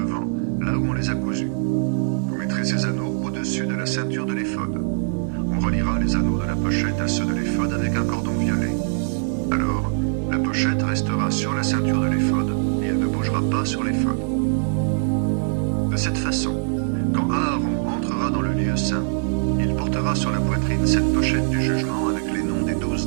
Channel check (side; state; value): left; silent; 64 dB below the other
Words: là où on les a cousus. Vous mettrez ces anneaux au-dessus de la ceinture de l'éphod. On reliera les anneaux de la pochette à ceux de l'éphod avec un cordon violet. Alors, la pochette restera sur la ceinture de l'éphod et elle ne bougera pas sur l'éphod. De cette façon, quand Aaron entrera dans le lieu saint, il portera sur la poitrine cette pochette du jugement avec les noms des 12